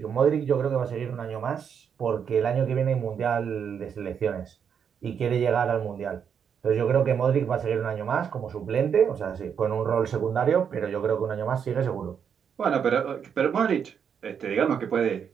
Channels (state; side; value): quieter; left; 7.5 dB